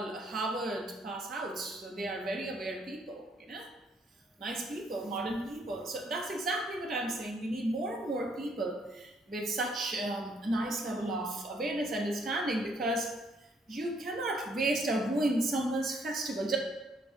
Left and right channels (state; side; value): normal; both; correlation 0.68